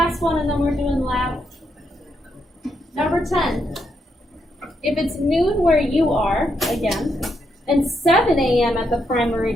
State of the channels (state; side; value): normal; both; correlation 0.79